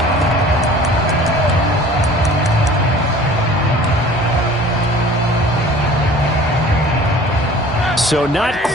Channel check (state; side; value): normal; both; correlation 0.46